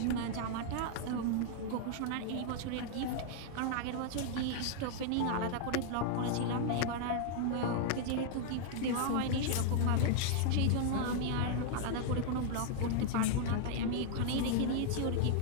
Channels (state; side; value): different; both; correlation -0.01